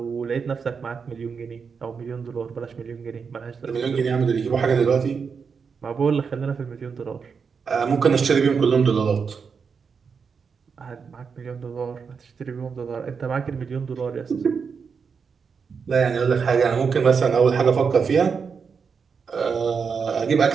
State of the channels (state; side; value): quieter; left; 5.8 dB